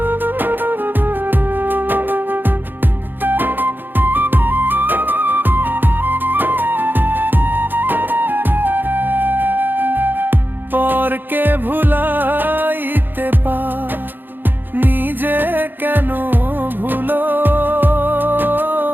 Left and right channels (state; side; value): late; left; 0.093 ms